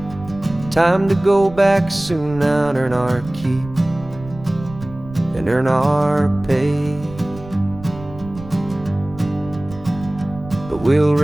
Time to go back soon now and earn our keep and earn our pay. But we'll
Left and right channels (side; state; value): right; noise; rumble, 16 dB below the sound